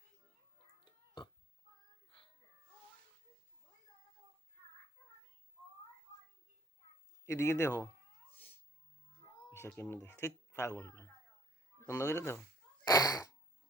এদিকে দেখো এসে কেমনি দেখ ঠিক পাগল বন্ধ করে দেখো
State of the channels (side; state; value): both; normal; correlation 0.60